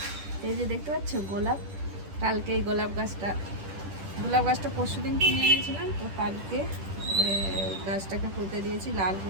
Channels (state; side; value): late; left; 10 ms